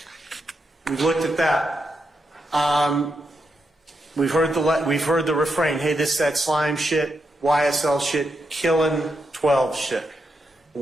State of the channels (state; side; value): normal; both; correlation 0.84